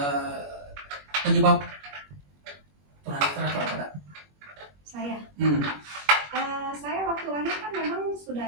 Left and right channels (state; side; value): late; left; 21 ms